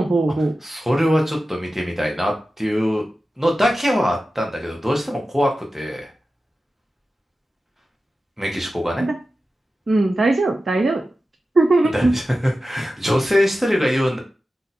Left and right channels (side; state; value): both; normal; correlation 0.93